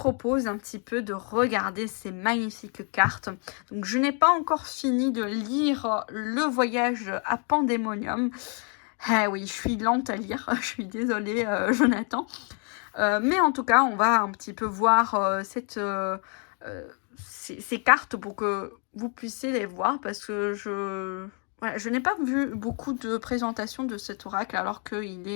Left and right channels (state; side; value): quieter; right; 39.9 dB